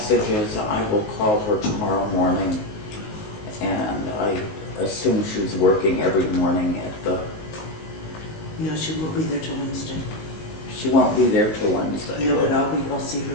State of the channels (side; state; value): right; late; 19 ms